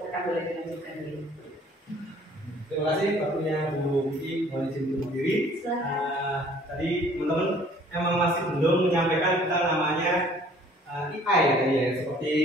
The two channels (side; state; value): both; normal; correlation 0.55